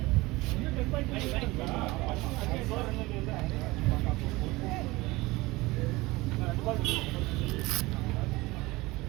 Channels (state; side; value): quieter; left; 21.2 dB